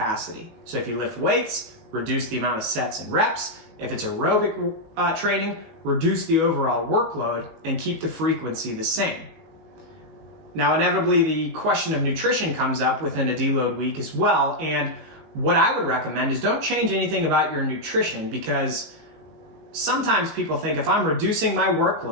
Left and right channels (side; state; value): left; late; 19 ms